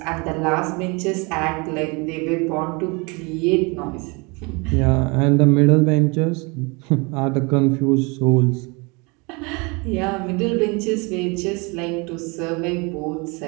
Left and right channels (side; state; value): left; quieter; 28.8 dB